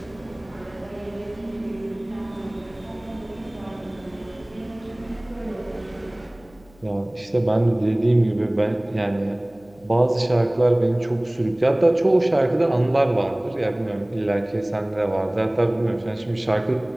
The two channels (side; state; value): left; noise; hum, 27 dB below the sound